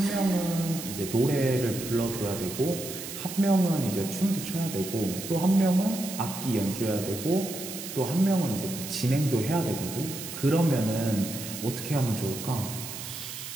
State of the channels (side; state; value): right; noise; hiss, 9 dB below the sound